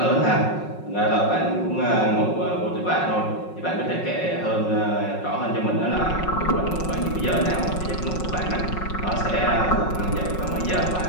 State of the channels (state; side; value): late; right; 5.5 ms